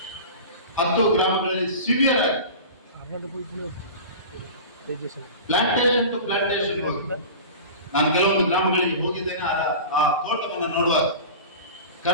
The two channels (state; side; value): inverted; both; correlation -0.34